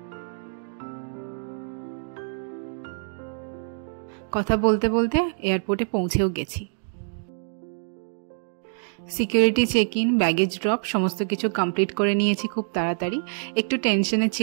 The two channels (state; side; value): silent; left; digital silence